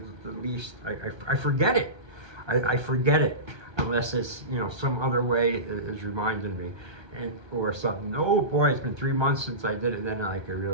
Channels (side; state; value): left; late; 1.3 ms